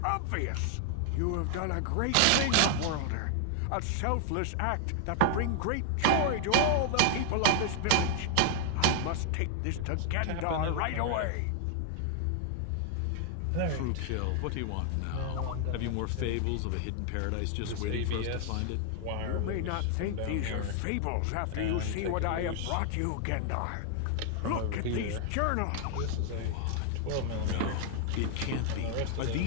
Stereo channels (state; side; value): different; both; correlation 0.00